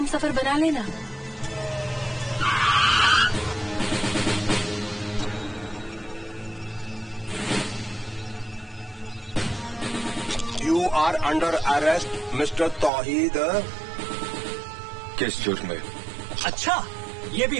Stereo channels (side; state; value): left; drops out; at 12.9 s